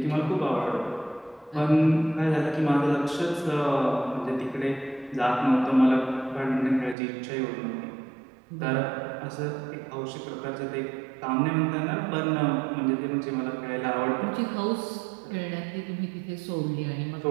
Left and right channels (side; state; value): left; drops out; at 7.0 s